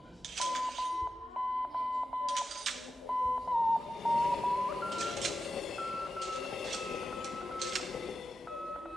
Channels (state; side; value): normal; both; correlation 0.90